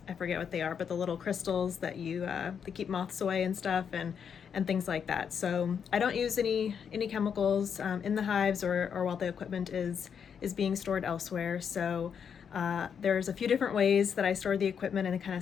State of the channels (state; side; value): quieter; right; 7.3 dB